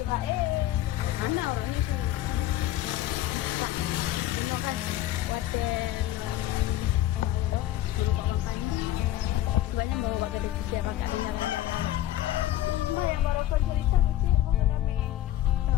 anak orang ni sini. Tak. Bunuh kan. Waten. Suruh bawa pandi. Banyak bawa bawa kedai kerja bakal jalan-jalan. Mbak yang baru kau cerita tu cik. Bukan kami.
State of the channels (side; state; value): right; quieter; 13.4 dB